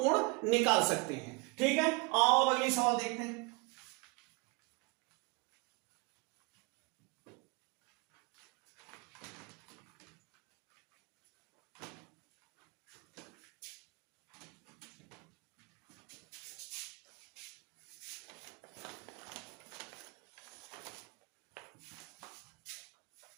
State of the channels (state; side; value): quieter; left; 29.0 dB